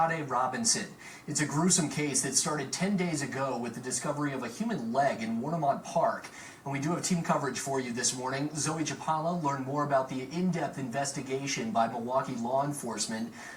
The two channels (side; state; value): both; identical; correlation 1.00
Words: Robinson. It's a gruesome case that started 10 days ago with the discovery of a human leg in Warnemont Park. And we do have team coverage for you this morning. Zoe Chapala learned more about the in-depth investigation by Milwaukee law enforcement.